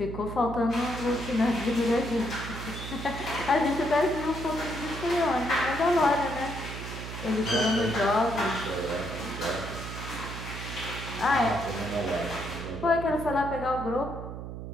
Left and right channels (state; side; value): noise; right; hum, 8 dB below the sound